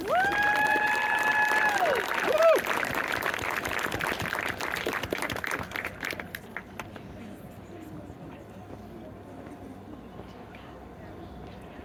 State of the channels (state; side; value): identical; both; correlation 1.00